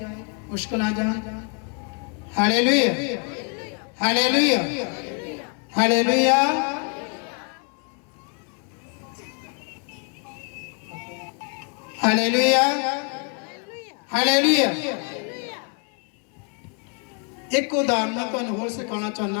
मुश्किल आ जाए। Hallelujah, hallelujah, hallelujah. Hallelujah, hallelujah. एक उदाहरण मैं तुहानू होर सिखाना चाहना।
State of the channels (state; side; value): quieter; right; 37.9 dB